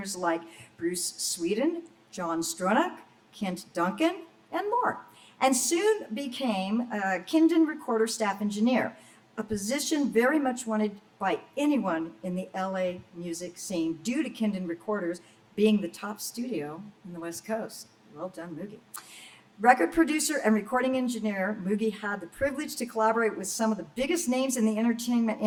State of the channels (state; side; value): identical; both; correlation 1.00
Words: like Bruce Sweden, John Stronach, Kent Duncan, and more, and soon became a Kindon Recorder staff engineer, a position very much wanted by anyone in the LA music scene due to Kindon Recorders being the top studio in the West Coast. Well done, Moogie. Record producer and recording engineer, Moogie had the privilege to collaborate with some of the biggest names in the entertainment